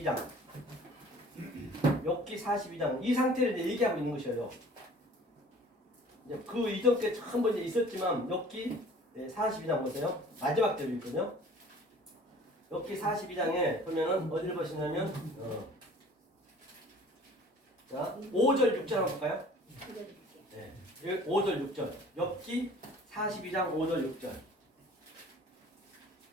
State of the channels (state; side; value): normal; both; correlation 0.49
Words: 욥기 42장. 이 상태를 이제 얘기하고 있는 것이에요. 이제 그 이전 때 한 번 있었지만 욥기 42장 보세요. 마지막 대로 있거든요. 욥기 42장에 보면은 어디를 보시냐면 자, 5절 6절 한번 볼까요? 네. 5절 6절. 욥기 42장 5절 6절.